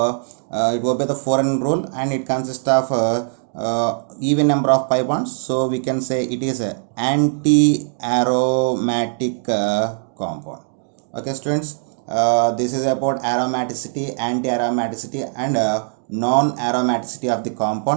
it will be the 4n rule, and it consists of even number of pi bonds. So we can say it is a anti-aromatic compound. Okay students, this is about aromaticity, anti-aromaticity, and non-aromaticity of the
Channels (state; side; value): silent; left; 65 dB below the other